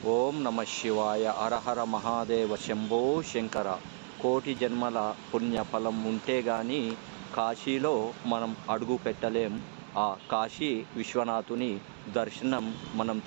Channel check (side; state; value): left; silent; 56 dB below the other